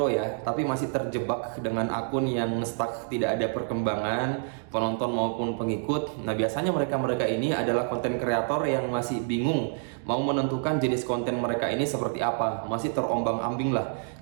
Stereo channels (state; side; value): silent; left; 60 dB below the other